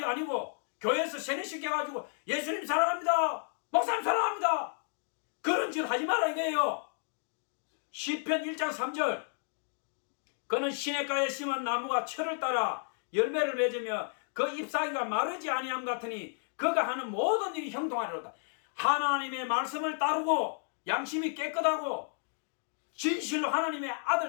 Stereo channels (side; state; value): right; silent; 56 dB below the other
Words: 아니고 교회에서 세뇌시켜가지고 예수님 사랑합니다. 목사님 사랑합니다. 그런 짓 하지 마라 이거예요. 시편 1장 3절 그는 시냇가에 심은 나무가 철을 따라 열매를 맺으며 그 잎사귀가 마르지 아니함 같으니 그가 하는 모든 일이 형통하리로다. 하나님의 말씀을 따르고 양심이 깨끗하고 진실로 하나님의